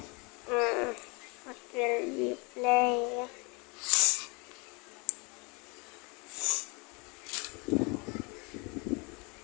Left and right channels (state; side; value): quieter; right; 30.0 dB